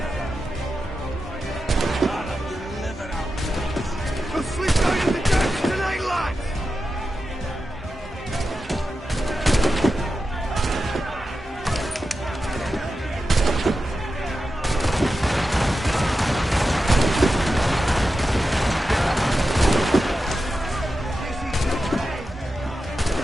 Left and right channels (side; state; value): both; normal; correlation 0.91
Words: The fleet's going in the deck!